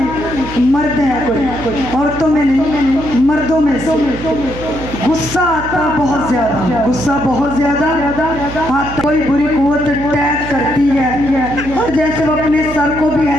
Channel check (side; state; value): right; noise; hum, 11 dB below the sound